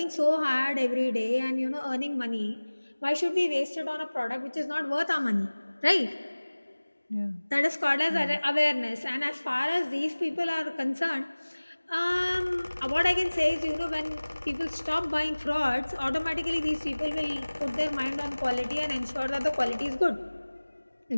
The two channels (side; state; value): both; inverted; correlation -1.00